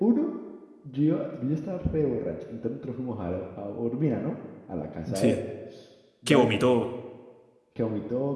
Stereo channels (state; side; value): identical; both; correlation 1.00